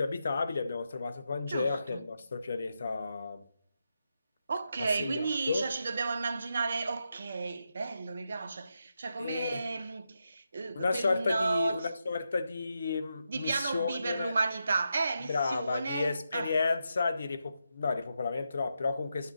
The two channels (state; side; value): inverted; both; correlation -0.85